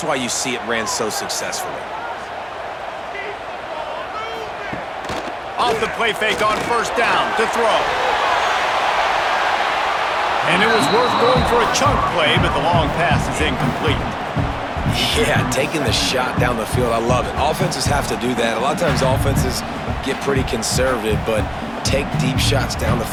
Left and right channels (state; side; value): identical; both; correlation 1.00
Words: why you see it ran so successfully. Off the play fake on first down to throw. And it was worth going for a chunk play, but the long pass is incomplete. Yeah, taking the shot down the field, I love it. Offenses have to do that. A lot of times offenses get pretty conservative, but take deep shots down the